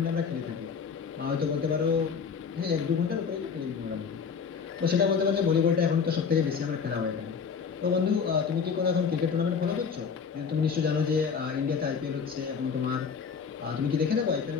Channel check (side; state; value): right; quieter; 6.1 dB